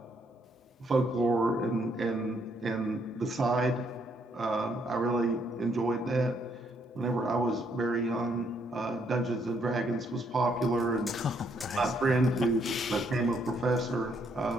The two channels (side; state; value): both; normal; correlation 0.71